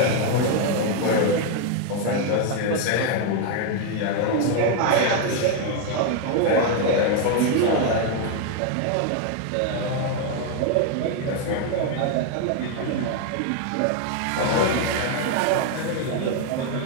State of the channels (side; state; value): both; different; correlation 0.01